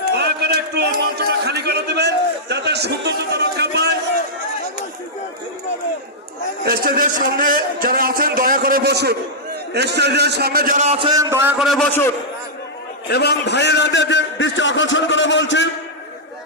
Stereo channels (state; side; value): normal; both; correlation -0.09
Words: দয়া করে একটু মঞ্চটা খালি করে দেবেন যাতে সৌন্দর্যতা রক্ষা পায়। স্টেজের সামনে যারা আছেন দয়া করে বসুন। স্টেজের সামনে যারা আছেন দয়া করে বসুন এবং ভাইয়েরাদের দৃষ্টি আকর্ষণ করে বলছি,